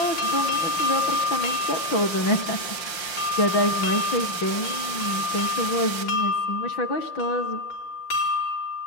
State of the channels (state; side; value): late; right; 5.6 ms